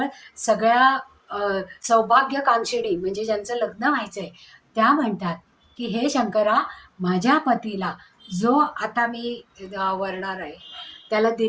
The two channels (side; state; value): both; identical; correlation 1.00